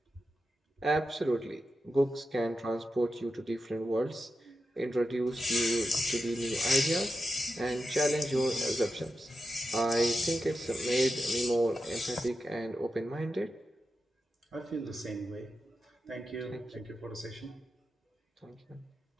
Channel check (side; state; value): both; normal; correlation 0.90